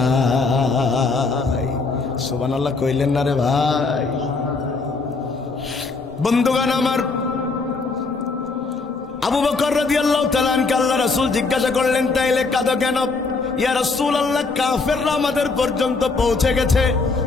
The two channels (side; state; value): right; quieter; 4.1 dB